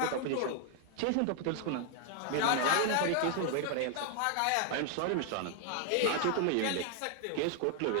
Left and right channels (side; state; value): both; different; correlation 0.00